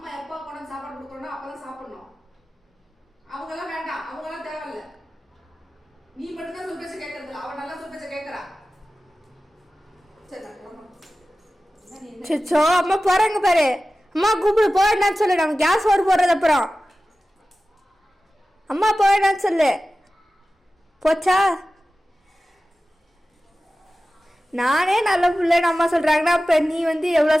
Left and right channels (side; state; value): both; normal; correlation 0.95